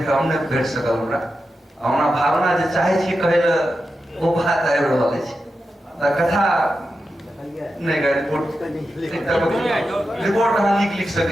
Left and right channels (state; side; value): normal; both; correlation 0.90